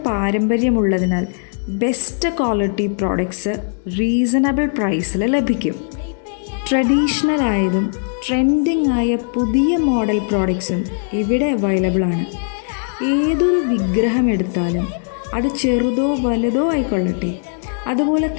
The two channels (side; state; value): right; silent; digital silence